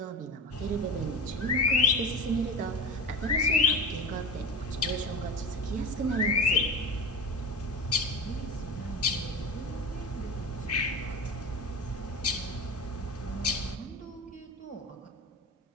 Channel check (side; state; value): both; normal; correlation 0.30